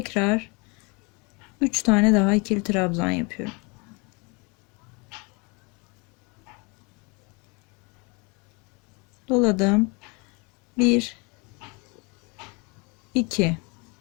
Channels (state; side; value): quieter; right; 30.0 dB